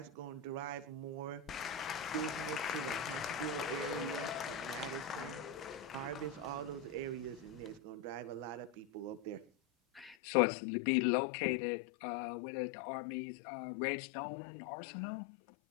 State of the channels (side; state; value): right; drops out; at 10.2 s